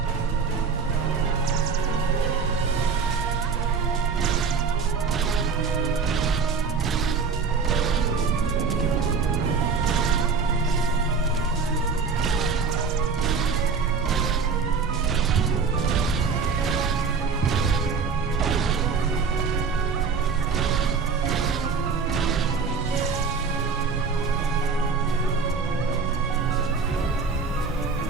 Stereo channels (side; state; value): left; quieter; 5.1 dB